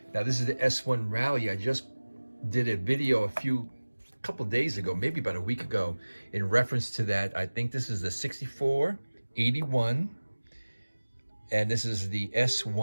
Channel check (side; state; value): both; inverted; correlation -1.00